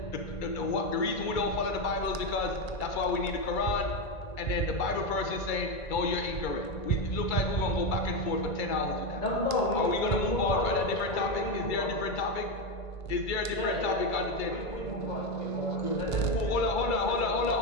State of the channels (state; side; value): late; right; 1.5 ms